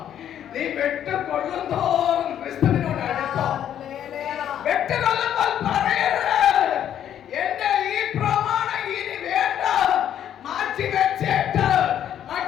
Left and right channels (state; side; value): quieter; right; 10.2 dB